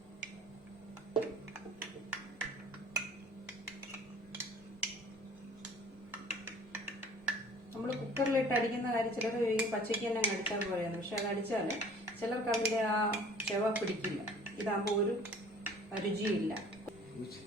നമ്മൾ കുക്കറിലിട്ട് അടിക്കുന്ന കാര്യം ചിലർ പച്ചയ്ക്ക് തന്നെ അടിച്ചാൽ പോലെയാണ്. പക്ഷെ അത് അടിച്ചാൽ ചിലർക്ക് അതിൻ്റെ ആ ചെവ പിടിക്കില്ല. ഇതാകുമ്പോൾ ഒരു രുചിയില്ല.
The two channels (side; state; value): both; normal; correlation 0.50